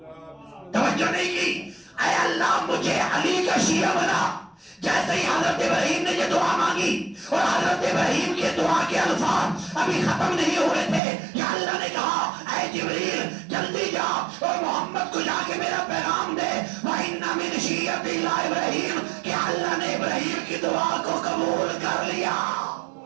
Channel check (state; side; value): drops out; left; at 11.0 s